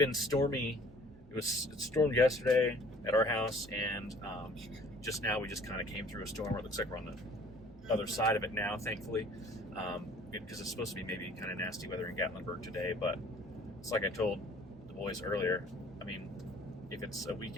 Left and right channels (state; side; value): normal; both; correlation 0.53